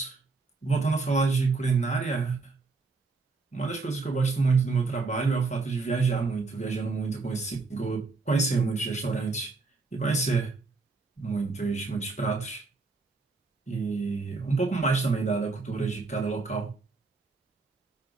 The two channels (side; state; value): left; quieter; 3.9 dB